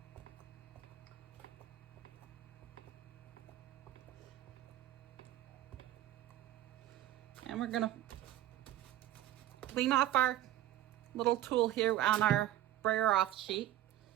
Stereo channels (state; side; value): quieter; left; 13.2 dB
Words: And we're going to clean off our little tool here on our brayer off sheet.